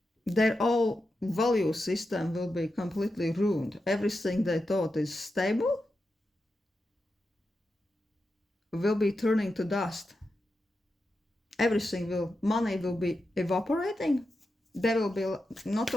Their whole value system will be completely ruined. Everything they thought is stable will be turning to dust. Money will be evaporating. They will be not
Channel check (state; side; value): normal; both; correlation 0.89